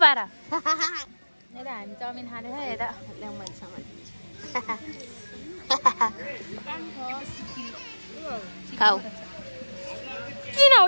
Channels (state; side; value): inverted; both; correlation -1.00